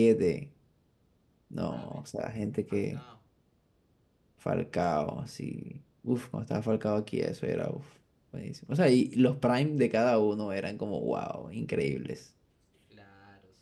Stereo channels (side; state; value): both; identical; correlation 1.00